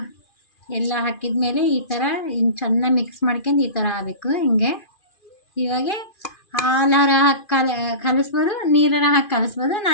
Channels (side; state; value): right; late; 2.4 ms